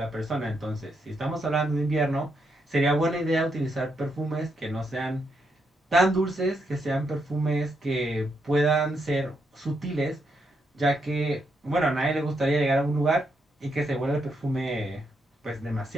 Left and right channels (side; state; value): both; normal; correlation 0.80